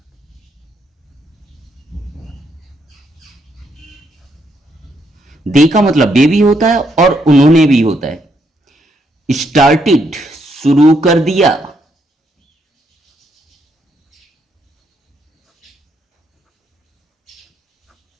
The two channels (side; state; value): both; normal; correlation 0.75